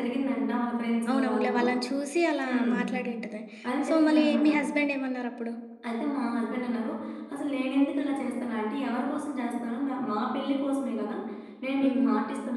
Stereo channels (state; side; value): identical; both; correlation 1.00